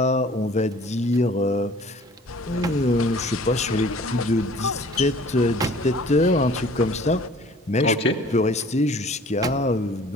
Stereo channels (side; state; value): both; normal; correlation 0.51